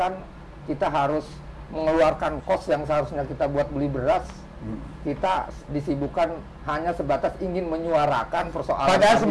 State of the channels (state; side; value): identical; both; correlation 1.00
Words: kita harus mengeluarkan kos yang seharusnya kita buat beli beras. Kita disibukkan hanya sebatas ingin menyuarakan persoalan. Padahal